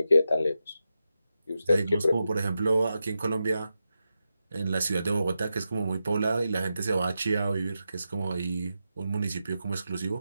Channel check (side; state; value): both; inverted; correlation -0.89